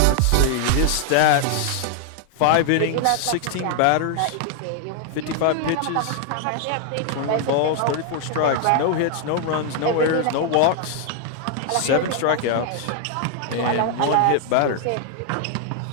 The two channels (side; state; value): both; different; correlation 0.00